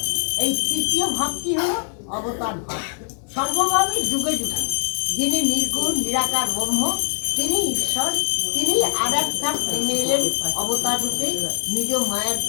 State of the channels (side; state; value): right; silent; digital silence